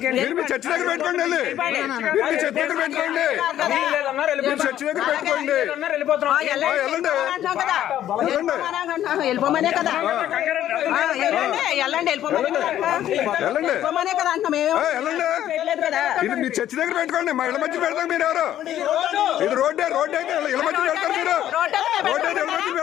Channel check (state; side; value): quieter; right; 11.9 dB